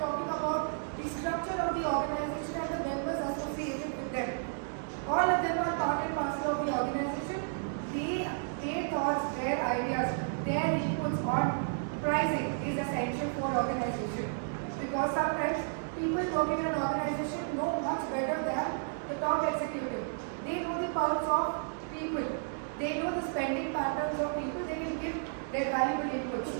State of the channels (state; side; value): silent; left; digital silence